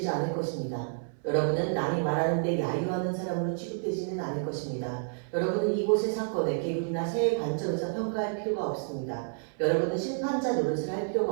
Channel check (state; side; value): silent; left; 55 dB below the other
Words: 않을 것입니다. 여러분은 남이 말하는데 야유하는 사람으로 취급되지는 않을 것입니다. 여러분은 이곳의 사건에 계급이나 세의 관점에서 평가할 필요가 없습니다. 여러분은 심판자 노릇을 할